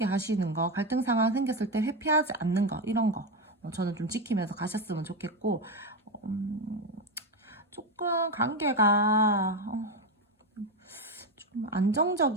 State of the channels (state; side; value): normal; both; correlation 0.12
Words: 하시는 거, 갈등 상황 생겼을 때 회피하지 않는 거, 이런 거, 저는 좀 지키면서 가셨으면 좋겠고, 조금 관계가, 좀